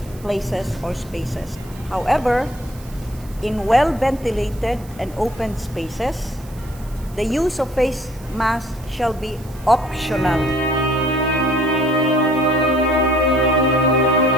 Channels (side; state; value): right; noise; hiss, 23 dB below the sound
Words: places or spaces. However, in well-ventilated and open spaces, the use of face masks shall be optional.